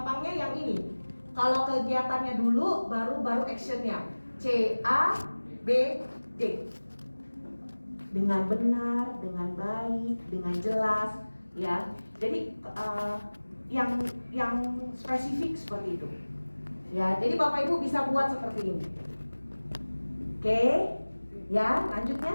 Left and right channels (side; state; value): both; inverted; correlation -1.00